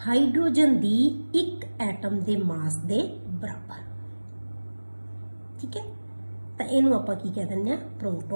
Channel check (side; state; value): both; inverted; correlation -1.00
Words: ਹਾਈਡਰੋਜਨ ਦੀ ਇੱਕ ਐਟਮ ਦੇ ਮਾਸ ਦੇ ਬਰਾਬਰ। ਠੀਕ ਹੈ, ਤਾਂ ਇਹਨੂੰ ਆਪਾਂ ਕੀ ਕਹਿ ਦਿੰਦੇ ਆ,